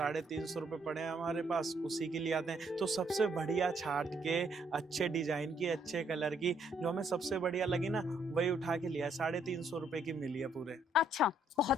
रुपये पड़े हैं हमारे पास, उसी के लिए आते हैं। तो सबसे बढ़िया छाट के, अच्छे डिजाइन की, अच्छे कलर की, जो हमें सबसे बढ़िया लगी ना, वही उठा के लिया। 350 रुपये की मिली है पूरे। अच्छा,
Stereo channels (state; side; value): normal; both; correlation 0.70